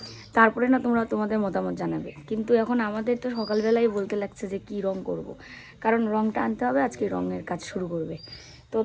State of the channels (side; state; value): both; identical; correlation 1.00